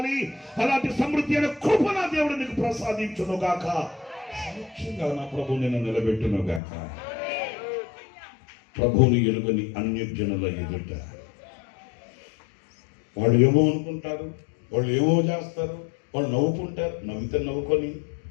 అలాంటి సమృద్ధి అయిన కృప నా దేవుడు నీకు ప్రసాదించును గాక. సాక్షిగా నా ప్రభు నిన్ను నిలబెట్టును గాక. ప్రభువుని ఎలుగని అన్యజనుల ఎదుట వాళ్ళు ఏమో అనుకుంటారు, వాళ్ళు ఏమో చేస్తారు, వాళ్ళు నవ్వుకుంటారు. నవ్వితే నవ్వుకొని,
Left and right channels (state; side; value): drops out; right; at 6.6 s